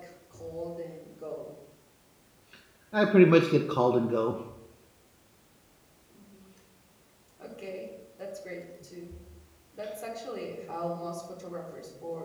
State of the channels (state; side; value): identical; both; correlation 1.00